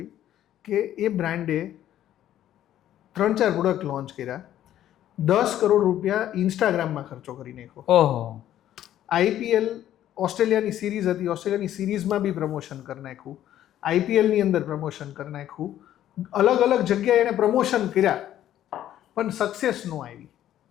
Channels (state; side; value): quieter; right; 11.9 dB